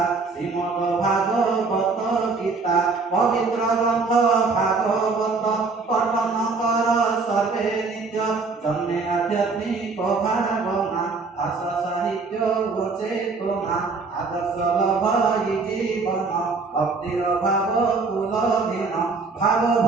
श्रीमद भागवत गीता पवित्र ग्रंथ भागवत पठन कर सर्वे नित्य जन्मे आध्यात्मिक भावना भाषा साहित्य चेतना आदर्श लभई जीवन भक्तिर भाव कुलधीन भाव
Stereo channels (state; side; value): quieter; left; 4.2 dB